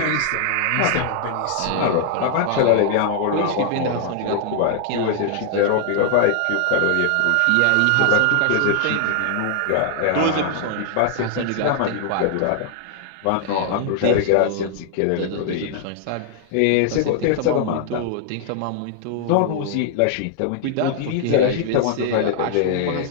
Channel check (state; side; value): different; both; correlation -0.01